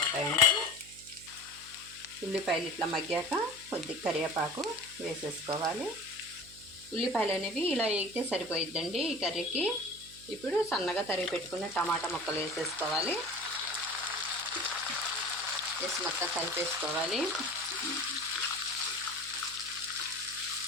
ఉల్లిపాయలు ఇట్లా మగ్గాక కొద్దిగా కరివేపాకు వేసేసుకోవాలి. ఉల్లిపాయలు అనేవి ఇలా వేగితే సరిపోయిద్దండి ఈ కర్రీకి. ఇప్పుడు సన్నగా తరిగి పెట్టుకున్న టమాటా ముక్కలు వేసేసుకోవాలి. వేసి మొత్తం కలిపేసుకోవాలి.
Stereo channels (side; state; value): right; noise; hum, 22 dB below the sound